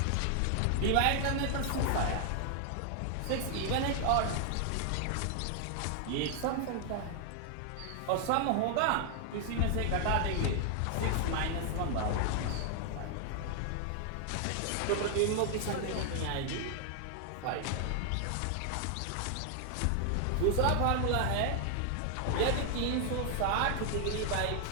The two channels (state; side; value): different; both; correlation 0.00